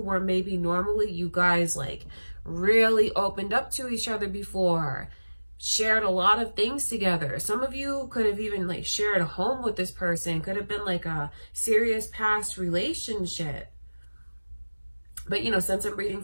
maybe normally you guys like really opened up to each other before, shared a lot of things together. Some of you could have even like shared a home with this person, could have been like a serious past relationship. But you know, since I'm reading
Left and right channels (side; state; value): both; inverted; correlation -1.00